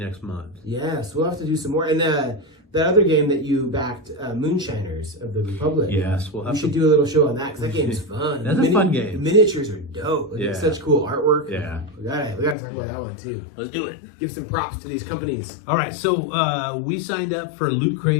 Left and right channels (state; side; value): drops out; right; at 12.6 s